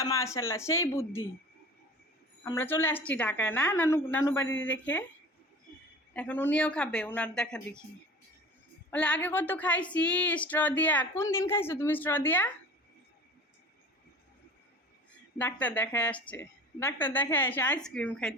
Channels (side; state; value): both; normal; correlation 0.40